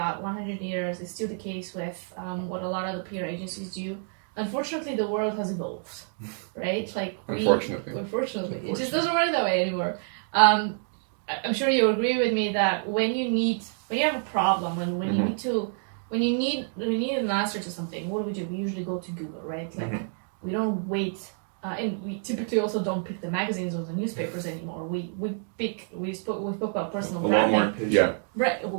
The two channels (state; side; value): silent; left; 59 dB below the other